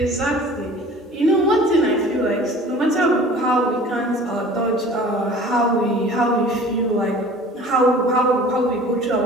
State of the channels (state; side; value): normal; both; correlation 0.45